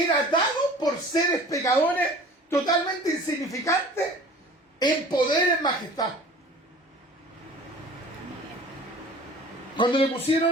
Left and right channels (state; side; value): normal; both; correlation 0.45